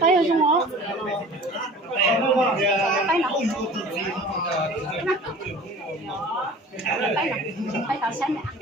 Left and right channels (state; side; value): normal; both; correlation 0.43